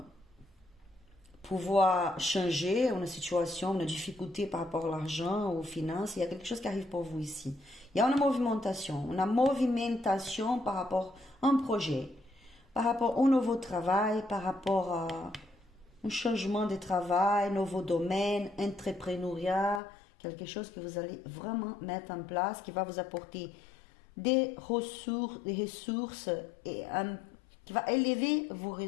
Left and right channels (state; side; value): drops out; right; at 19.8 s